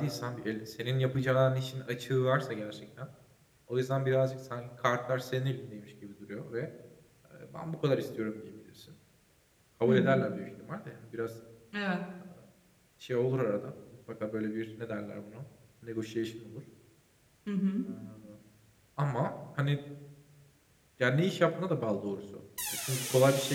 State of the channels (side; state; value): both; identical; correlation 1.00